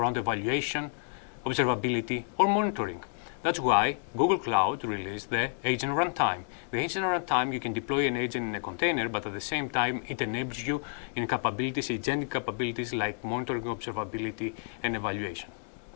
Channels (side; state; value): right; silent; digital silence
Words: evaluation, observability, or monitoring. That's why Google Cloud released the Agent Runtime. The Agent Runtime, you can deploy an agent in a container, but at the same time, it enables you in capabilities, agentic capabilities like monitoring, observability, and evaluation.